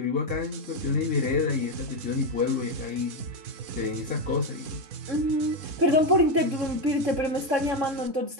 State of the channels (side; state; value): left; late; 3.7 ms